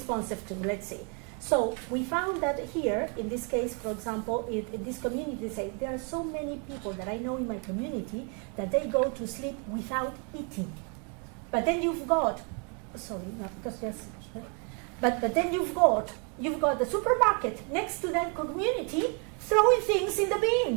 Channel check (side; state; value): left; quieter; 37.2 dB